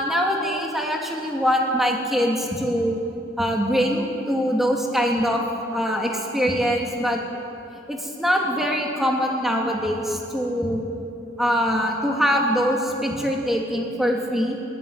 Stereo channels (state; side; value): normal; both; correlation 0.68